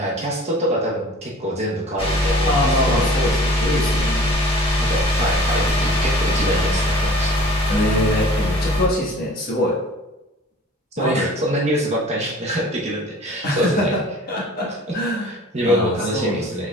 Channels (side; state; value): both; normal; correlation 0.47